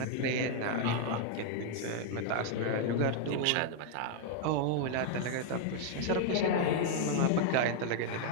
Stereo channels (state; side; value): different; both; correlation 0.00